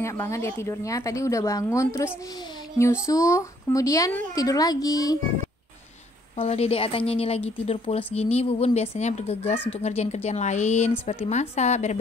banget dia tidurnya. Tadi udah bangun terus nyusu, kemudian tidur lagi. Kalau Dede Atanya ini lagi tidur pules gini, Bubun biasanya bergegas untuk ngerjain kerjaan lain seperti masak,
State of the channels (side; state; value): both; normal; correlation 0.65